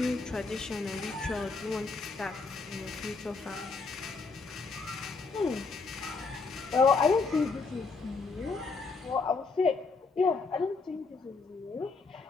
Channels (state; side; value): quieter; right; 4.2 dB